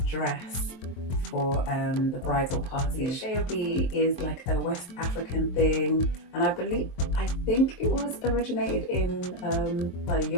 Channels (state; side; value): late; right; 23 ms